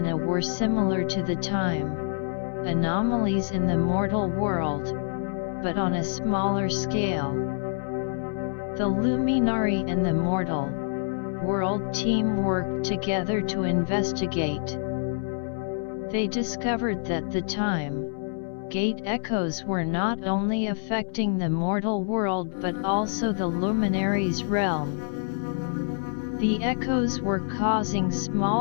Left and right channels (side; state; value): right; silent; 59 dB below the other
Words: were similar to the time anomalies in the mortal world, but on a smaller scale. The Luminari and the mortal world team worked together to investigate. They discovered that the time gate echoes were not only affecting the mortal world but also the Luminaries' realm. The echoes were causing